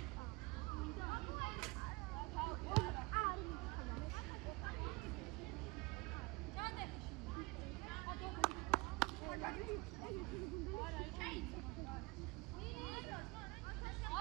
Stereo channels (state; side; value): quieter; left; 24.7 dB